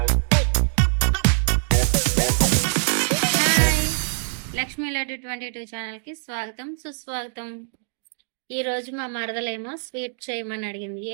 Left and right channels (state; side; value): silent; left; 63 dB below the other